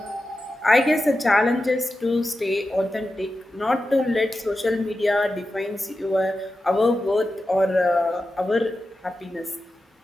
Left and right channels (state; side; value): normal; both; correlation 0.92